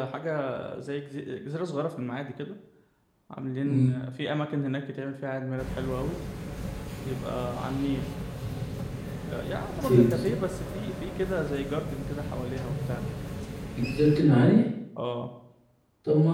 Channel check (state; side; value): identical; both; correlation 1.00